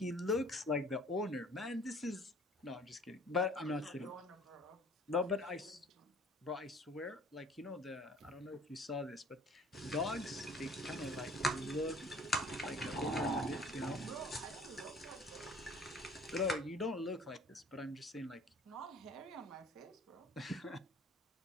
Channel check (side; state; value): both; normal; correlation 0.51